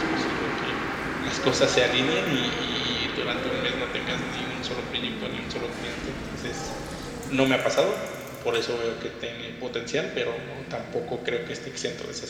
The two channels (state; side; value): identical; both; correlation 1.00